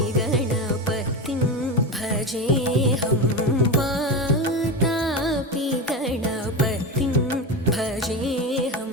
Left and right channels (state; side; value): normal; both; correlation 0.20